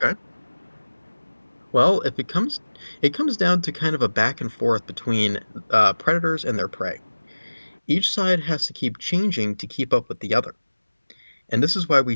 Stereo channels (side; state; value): both; inverted; correlation -1.00